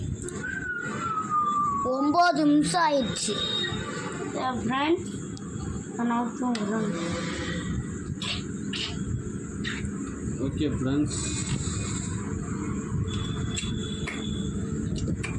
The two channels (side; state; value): both; identical; correlation 1.00